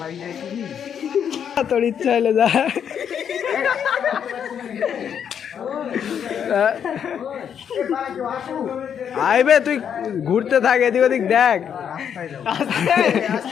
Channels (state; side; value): quieter; right; 8.2 dB